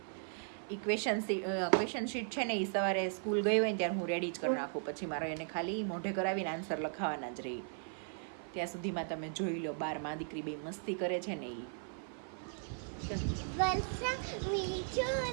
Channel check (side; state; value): left; silent; 53 dB below the other